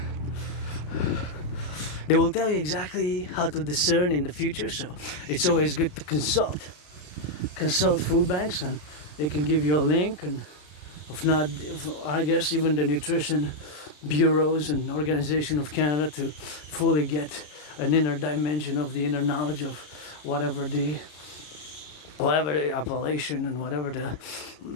They will tell you exactly how to discern in the future, so it's always good to consult food banks, and they can give you a link, and I guess even the nutrition bureaus and Organization of Canada, to fully get an inner dimension of the inner knowledge of whatever the appellation and whatever the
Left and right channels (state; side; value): late; right; 33 ms